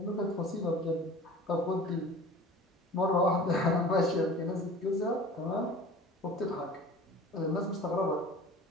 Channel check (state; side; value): normal; both; correlation 0.41